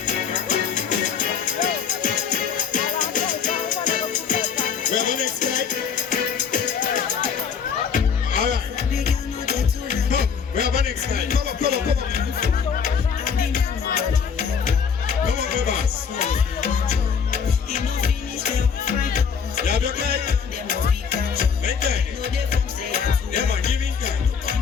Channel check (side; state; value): right; quieter; 6.7 dB